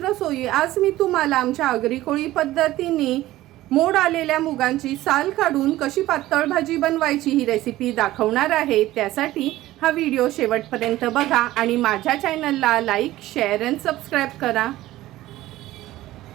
आज मी तुम्हाला आमच्या आगरी कोळी पद्धतीने मोड आलेल्या मुगांची साल काढून कशी पातळ भाजी बनवायची ही रेसिपी दाखवणार आहे। त्यासाठी हा व्हिडिओ शेवटपर्यंत बघा आणि माझ्या चॅनलला लाईक, शेअर आणि सबस्क्राइब करा।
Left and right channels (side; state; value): left; quieter; 16.0 dB